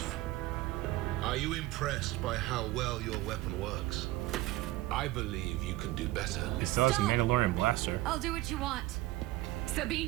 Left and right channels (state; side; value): quieter; left; 17.4 dB